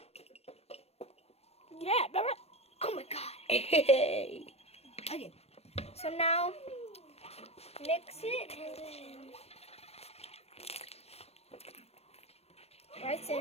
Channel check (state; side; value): late; right; 0.30 ms